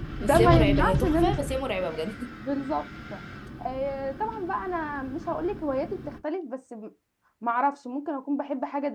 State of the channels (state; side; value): identical; both; correlation 1.00